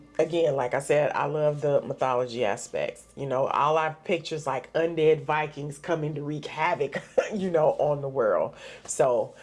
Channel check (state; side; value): identical; both; correlation 1.00